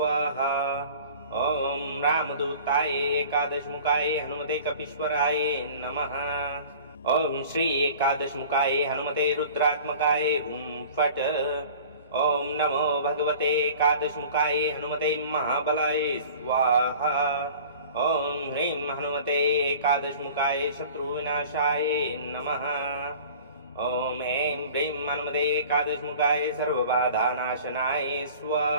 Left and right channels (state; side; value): inverted; both; correlation -0.44